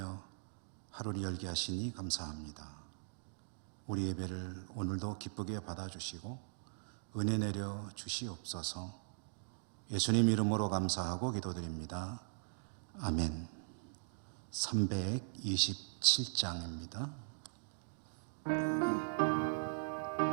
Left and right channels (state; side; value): silent; left; digital silence